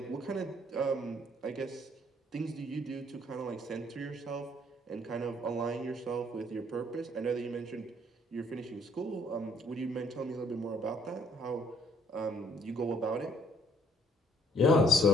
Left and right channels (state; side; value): normal; both; correlation 0.64